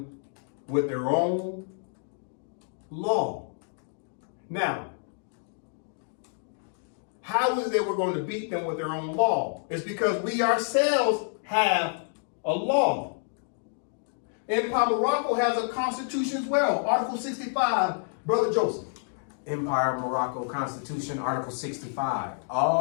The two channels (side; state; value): right; silent; 59 dB below the other